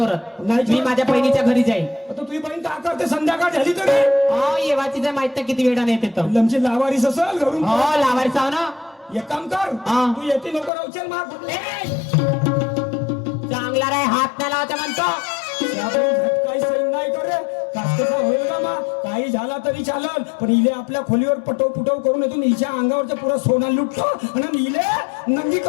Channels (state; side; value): drops out; right; at 10.7 s